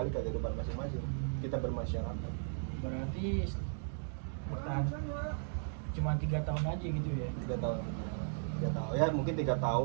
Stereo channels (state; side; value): silent; left; digital silence